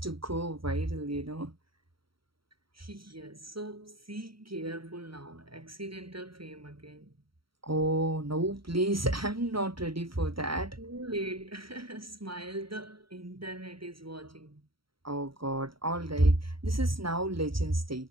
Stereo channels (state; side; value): late; left; 0.74 ms